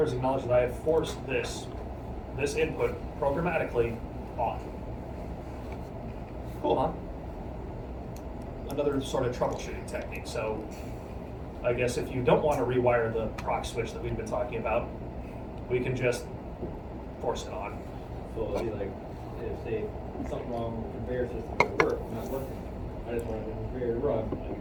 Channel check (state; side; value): identical; both; correlation 1.00